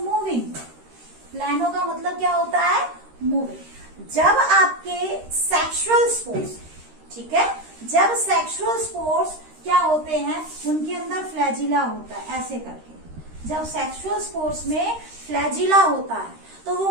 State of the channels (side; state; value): left; late; 13 ms